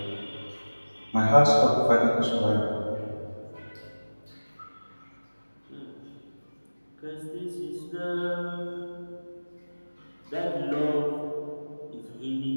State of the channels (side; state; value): both; inverted; correlation -1.00